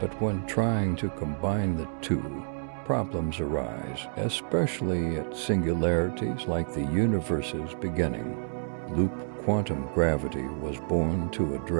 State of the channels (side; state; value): left; silent; 59 dB below the other